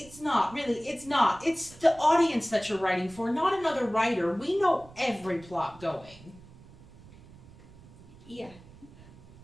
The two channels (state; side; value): noise; right; rumble, 22 dB below the sound